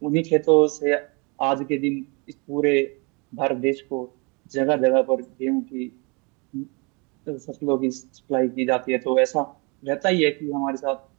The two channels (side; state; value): left; quieter; 30.8 dB